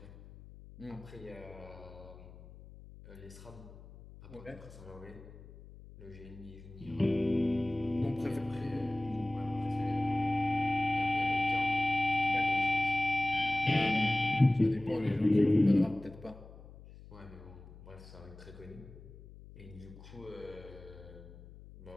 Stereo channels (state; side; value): noise; left; hum, 18 dB below the sound